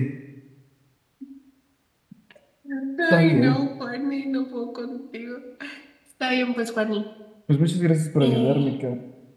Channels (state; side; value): identical; both; correlation 1.00